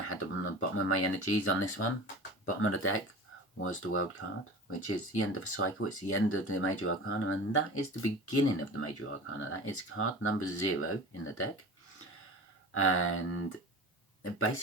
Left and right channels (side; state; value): both; normal; correlation 0.36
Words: had them on the bottom of my energies on this one. Bottom of the deck was the World card, which is the end of a cycle. It's the end of the Major Arcana, and that is the beginning of the Major Arcana. That is card number 0 in the deck. And